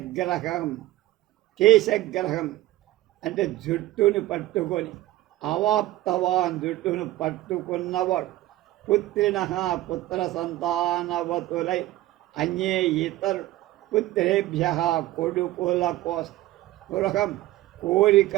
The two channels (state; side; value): quieter; left; 16.4 dB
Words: కేశగ్రహం అంటే జుట్టును పట్టుకొని అవాప్తవాన్ జుట్టును పట్టుకున్నవాడు పుత్రిణ పుత్ర సంతానవతులై అన్యే ఇతరు పుత్రేభ్య కొడుకుల స్పృహం